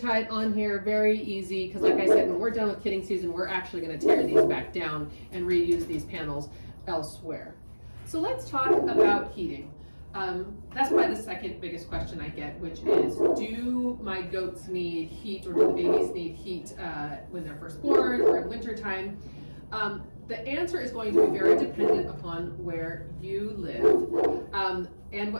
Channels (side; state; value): both; inverted; correlation -1.00